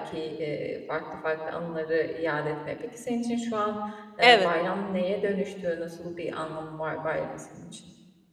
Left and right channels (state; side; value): identical; both; correlation 1.00